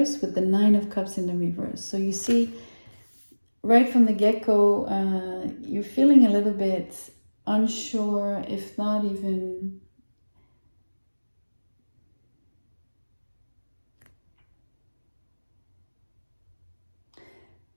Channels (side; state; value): both; inverted; correlation -1.00